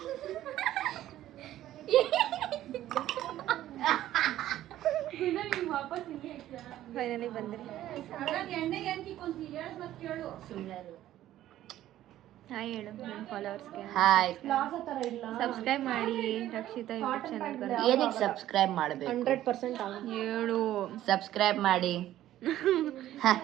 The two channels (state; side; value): quieter; left; 13.3 dB